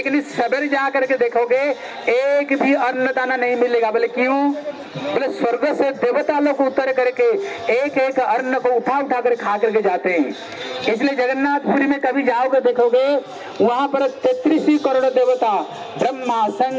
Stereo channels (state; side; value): identical; both; correlation 1.00